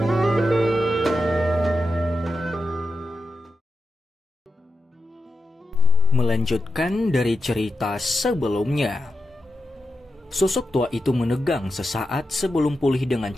Melanjutkan dari cerita sebelumnya. Sosok tua itu menegang sesaat sebelum pulih dengan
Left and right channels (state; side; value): normal; both; correlation 0.90